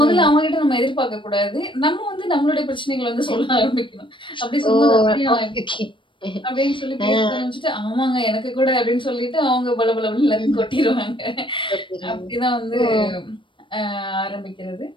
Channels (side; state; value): right; late; 0.24 ms